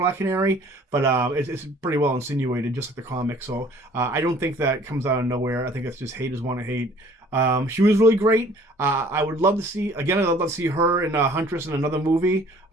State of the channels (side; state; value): both; normal; correlation 0.54